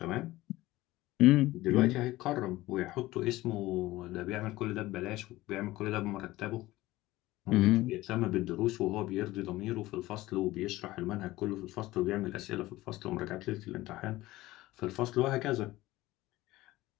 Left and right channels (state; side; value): quieter; right; 17.8 dB